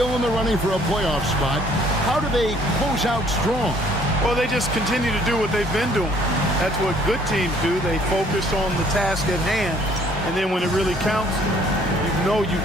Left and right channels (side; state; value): both; normal; correlation 0.60